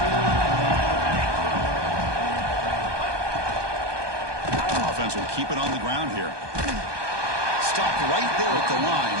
42. Offense will keep it on the ground here. Stopped right there at the line.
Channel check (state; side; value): late; left; 1.2 ms